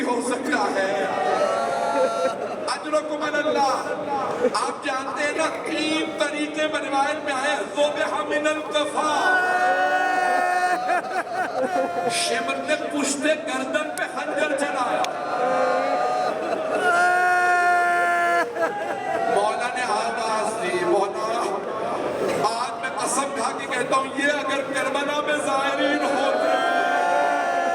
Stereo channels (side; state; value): both; identical; correlation 1.00